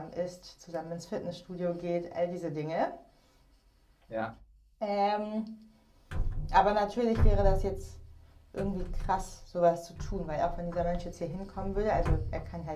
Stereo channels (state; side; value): identical; both; correlation 1.00